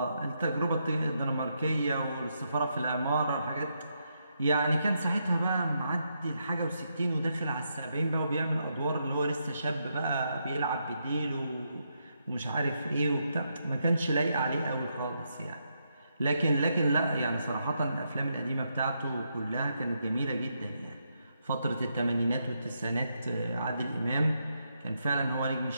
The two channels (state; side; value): inverted; both; correlation -0.80